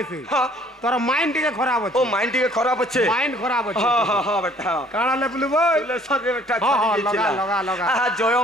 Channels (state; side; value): normal; both; correlation 0.57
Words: थी हां तोर माइंड टिके खराब अछि ओ माइंड टिके खराब अछि माइंड खराब अछि हां हां हां बेटा काना ले बुलबो ले सब बेटा हां लगा लगा लगा आ जय